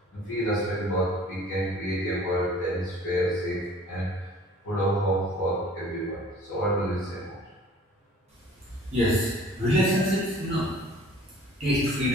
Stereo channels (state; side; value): normal; both; correlation 0.50